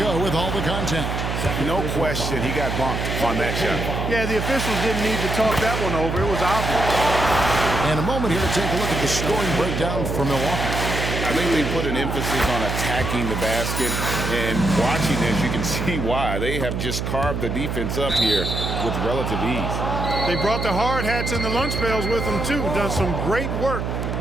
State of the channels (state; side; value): noise; right; hum, 2 dB below the sound